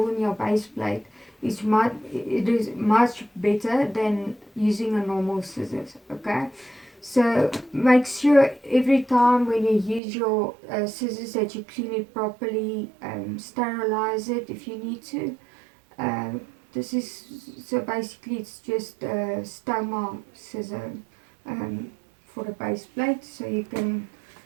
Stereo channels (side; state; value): left; drops out; at 10.0 s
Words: in your base plate is much better than using a normal scissors. Okay. So make sure every time when you use your scissors that you clean it properly, sterilize it if you need to. This is, so basically it's just a stoma scissor for the base plate, so you can